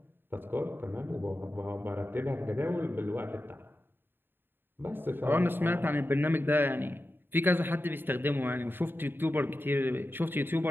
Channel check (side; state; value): left; late; 0.098 ms